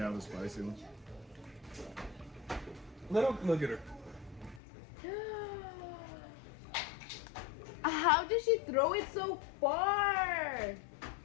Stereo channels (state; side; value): drops out; right; at 4.6 s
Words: the spicy one. Look at her. How did she throw it so far?